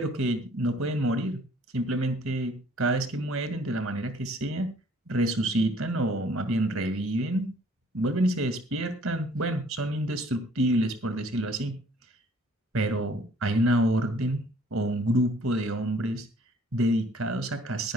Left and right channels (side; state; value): both; normal; correlation 0.57